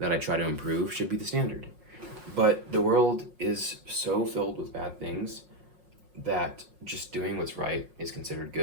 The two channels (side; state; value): left; late; 5.5 ms